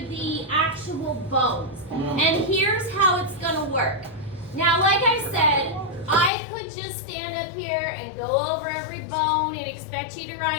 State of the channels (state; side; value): drops out; right; at 6.3 s